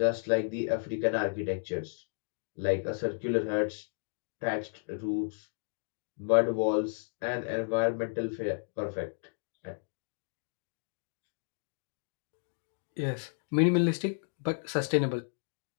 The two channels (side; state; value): right; silent; digital silence